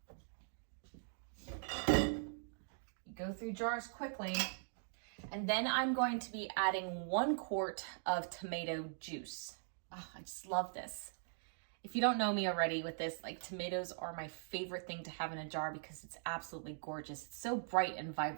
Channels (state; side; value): silent; left; digital silence